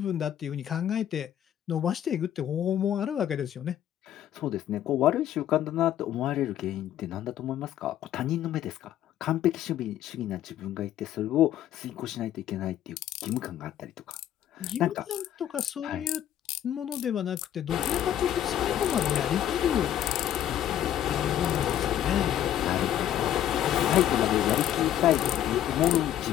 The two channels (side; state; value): right; quieter; 11.3 dB